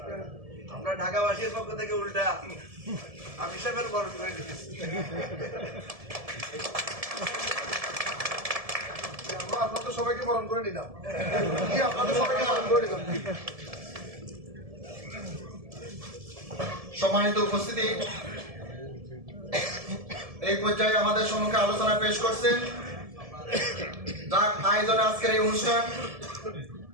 আমরা ঢাকাবাসীর পক্ষ থেকে উল্টা আমি সাহেবের বরণ করে দিচ্ছি। আপনাদের সবাইকে বরণ করে নিলাম, আপনাদের সবাইকে বরণ করে নিলাম। সম্মানিত উপস্থিতি, এই পর্যায়ে আমাদের সম্মুখে আলোচনা পেশ করছেন যার আয়োজনে আজকের এই অনুষ্ঠান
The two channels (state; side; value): late; left; 1.7 ms